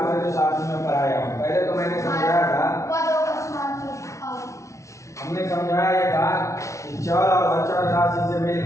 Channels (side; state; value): right; late; 0.14 ms